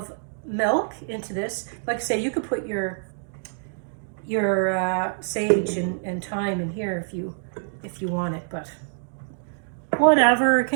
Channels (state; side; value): silent; left; digital silence